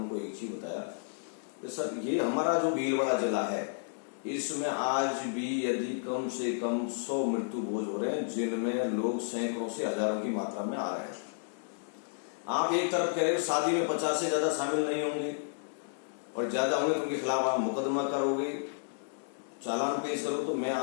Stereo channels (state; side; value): silent; right; digital silence